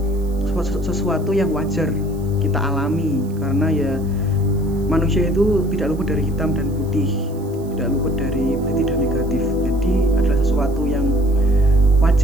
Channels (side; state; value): right; noise; hiss, 25 dB below the sound